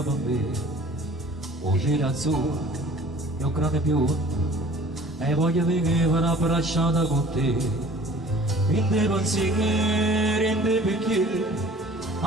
me. O cielo azzurro e un grande biondo, e voglio vivere abbracciata con te. In dei pensieri, in dei bicchieri,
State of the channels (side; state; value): both; normal; correlation 0.48